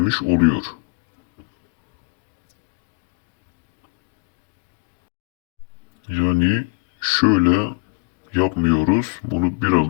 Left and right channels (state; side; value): quieter; right; 32.4 dB